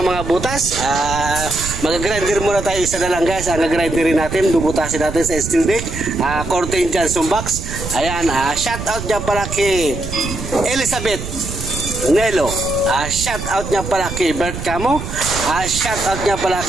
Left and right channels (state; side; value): noise; right; rumble, 8 dB below the sound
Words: mga butas. Mag-grinder muna tayo isa na lang guys. Nag-grinderin natin, bubutasin natin sa steel deck. Cortez Johnson Box. Ayan, shout out niya pala kay Elizabeth Nelo. Shout out niya pala kay Bert Camo. Shout out niya pala